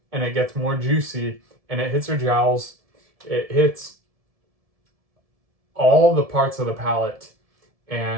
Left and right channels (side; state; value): left; late; 1.7 ms